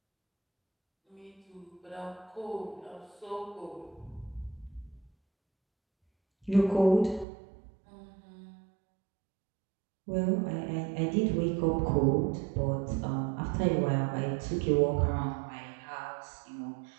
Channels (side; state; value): left; drops out; at 7.2 s